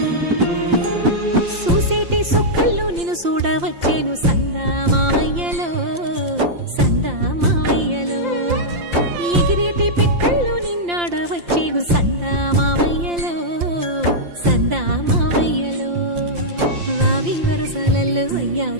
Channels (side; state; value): left; late; 5.8 ms